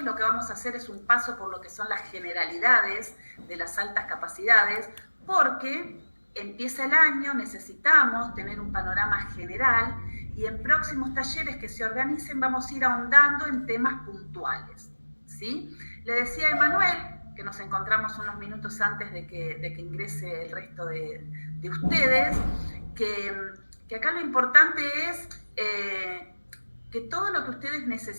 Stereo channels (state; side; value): inverted; both; correlation -1.00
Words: Lo que vamos a hacer es un paso por lo que son las generalidades de las altas capacidades, porque empieza el año, necesitamos tener un panorama general, y en próximos talleres que se organicen vamos a ir ahondando en temas puntuales, ¿sí? Le decía a Emanuel, que nos encontramos unos minutos antes de que ingrese el resto de ustedes, que acá lo importante es que todo lo que ustedes